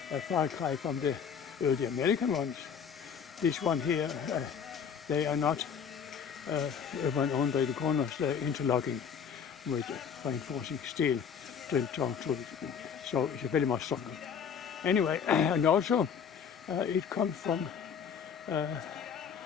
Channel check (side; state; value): right; quieter; 7.1 dB